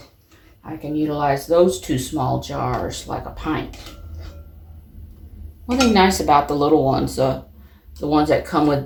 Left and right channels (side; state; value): both; identical; correlation 1.00